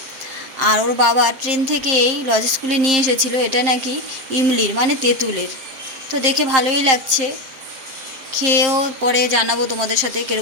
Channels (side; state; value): left; late; 7.6 ms